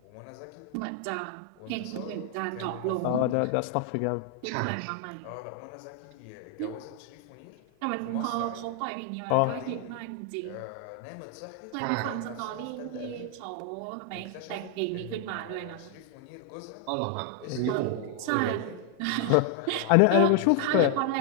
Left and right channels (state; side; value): different; both; correlation 0.00